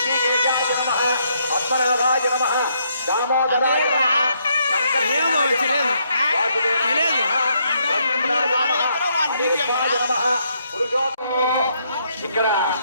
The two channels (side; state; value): both; inverted; correlation -0.74